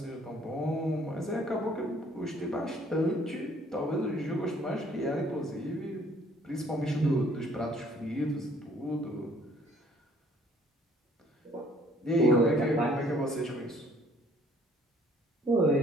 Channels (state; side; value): normal; both; correlation 0.60